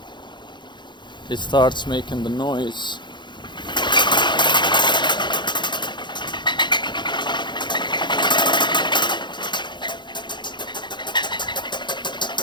it starts making the noise.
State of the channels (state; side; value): late; right; 0.22 ms